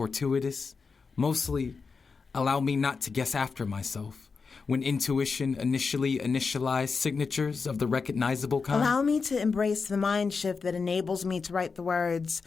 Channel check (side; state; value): right; quieter; 4.9 dB